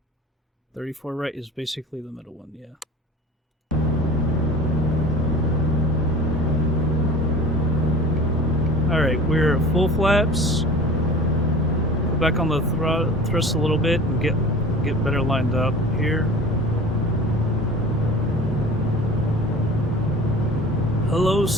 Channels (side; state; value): both; normal; correlation 0.41